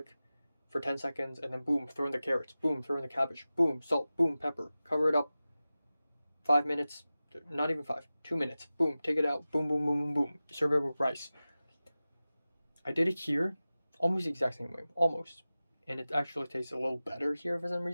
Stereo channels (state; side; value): inverted; both; correlation -0.96